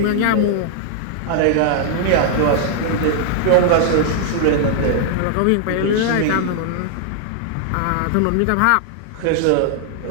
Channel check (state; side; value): different; both; correlation 0.00